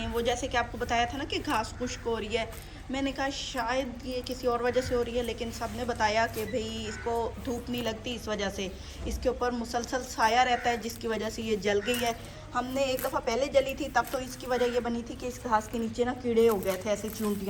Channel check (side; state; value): both; identical; correlation 1.00